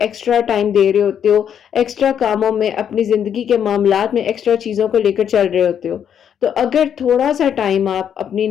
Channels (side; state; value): right; quieter; 8.7 dB